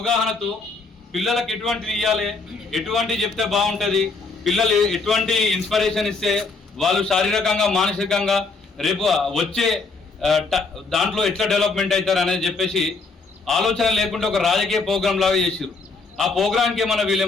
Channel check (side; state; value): right; quieter; 4.0 dB